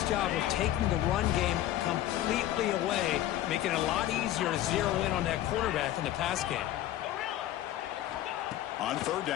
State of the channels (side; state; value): right; quieter; 13.3 dB